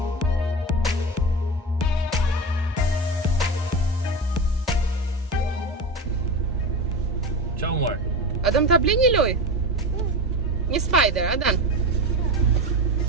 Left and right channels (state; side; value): normal; both; correlation 0.24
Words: Qa u marr? A do më ta blej një loj? Një spider, a dan?